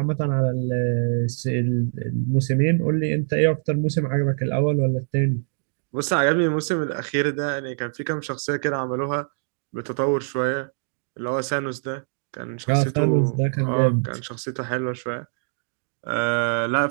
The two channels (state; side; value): silent; left; 63 dB below the other